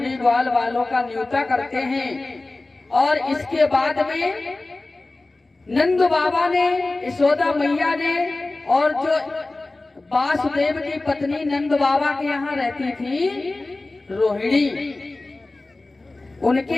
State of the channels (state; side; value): quieter; right; 3.1 dB